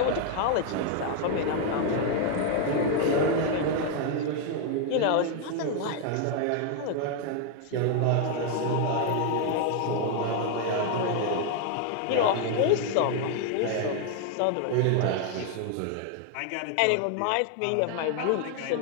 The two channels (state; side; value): different; both; correlation 0.00